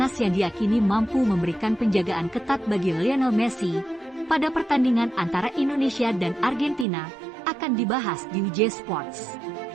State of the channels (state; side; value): drops out; left; at 6.9 s